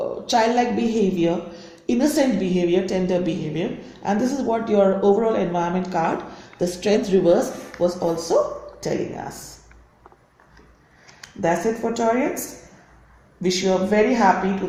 childlike behavior, innocent behavior, tender behavior. And this is what your overall environment card, the Strength reverse, was also telling us. That's it for Taurians. Wish you a very happy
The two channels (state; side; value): identical; both; correlation 1.00